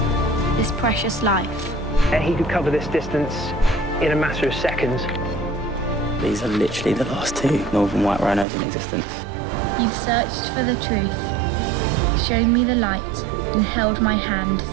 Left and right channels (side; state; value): left; drops out; at 8.5 s